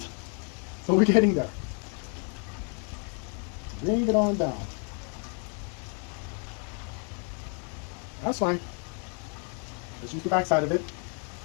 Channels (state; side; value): quieter; right; 39.9 dB